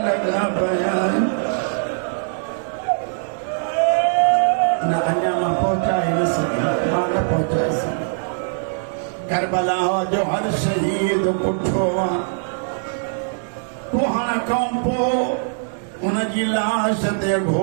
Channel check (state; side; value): silent; left; digital silence